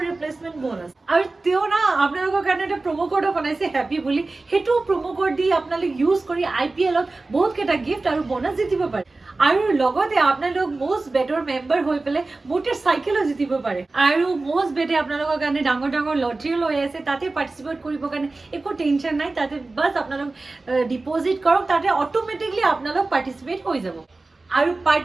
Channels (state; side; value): quieter; left; 3.4 dB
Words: ৰিপ্লেচমেণ্ট বোনাছ আৰু তেওঁ না আপোনালোকৰ কাৰণে এটা প্ৰমো কোডো বনাইছে হেপী বুলি সেইটো প্ৰমো কোড দি আপোনালোক ইউজ কৰি IPLত বহুত কেইটা গিফ্ট আৰু বোনাছ জিতিব পাৰে আৰু লগতে আপোনালোক মোষ্ট বেটৰ মেম্বাৰ হৈ পেলে মটৰচাইকেলো জিতিব পাৰে আৰু মোষ্ট বেটে আপোনালোকৰ কাৰণে ডাঙৰ লটাৰী লৈ আছে তাতে পাৰ্টিসিপেট কৰিব কাৰণে একো টেনচন নাই তাতে বাস আপোনালোক ডিপোজিট কৰক তাতে অটোমেটিকলি আপোনালোক পাৰ্টিসিপেট হৈ যাব আৰু